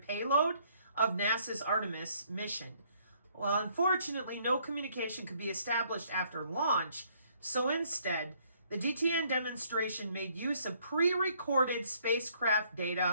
of NASA's Artemis mission. Well, unfortunately, no communication could be established after launch, so instead, the DTN demonstration made use of pre-recorded spacecraft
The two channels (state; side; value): inverted; both; correlation -0.65